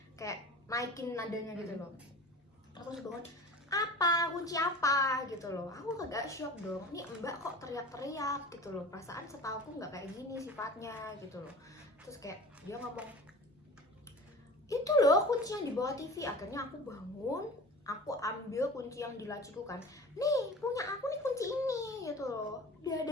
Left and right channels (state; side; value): normal; both; correlation 0.37